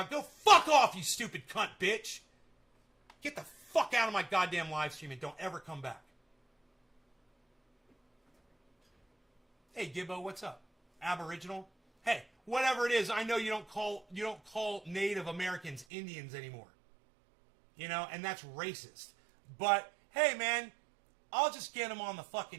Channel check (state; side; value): drops out; left; at 15.9 s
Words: go fuck off, you stupid cunt bitch. Get the fuck out of my goddamn live stream and don't ever come back. Hey Gibbo, what's up? Aboriginal? Hey, whatever it is, I know you don't call Native Americans Indians anymore. You know, and that's racist. But hey man, I'll just get him on the